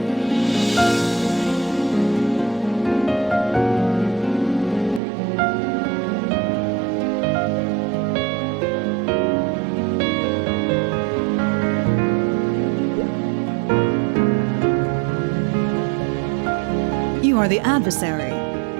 You are the adversary.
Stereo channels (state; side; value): drops out; left; at 5.0 s